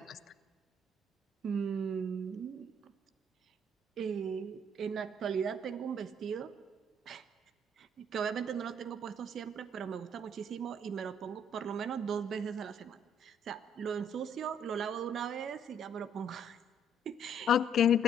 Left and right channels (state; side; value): normal; both; correlation 0.64